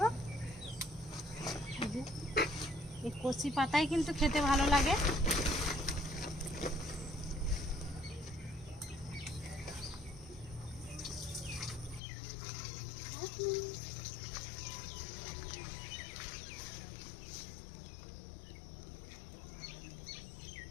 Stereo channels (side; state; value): right; drops out; at 12.0 s